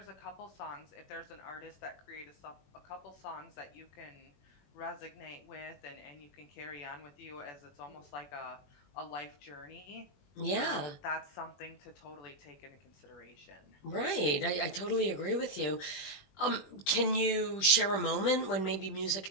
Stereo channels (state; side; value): late; right; 21 ms